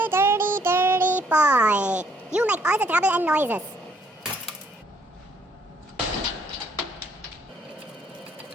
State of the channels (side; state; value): both; normal; correlation 0.66